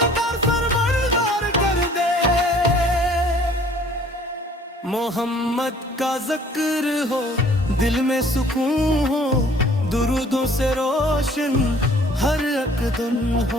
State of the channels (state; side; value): normal; both; correlation 0.55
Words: फरमानदार कर दे। मोहम्मद का जिक्र हो, दिल में सुकून हो, दुरूदों से रोशन हर अक़दम